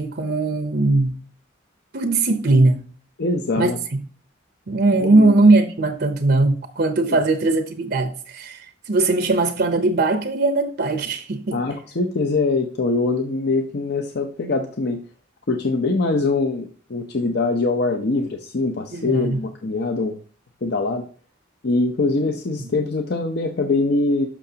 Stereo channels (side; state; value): both; normal; correlation 0.48